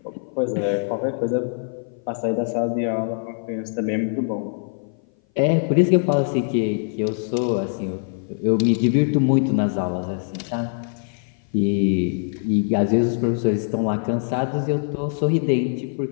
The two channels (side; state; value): right; silent; 58 dB below the other